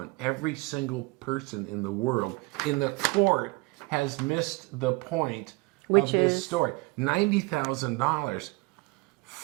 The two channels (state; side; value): quieter; left; 25.6 dB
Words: every single person in the world, in the court, has missed the point of this story. $90,000,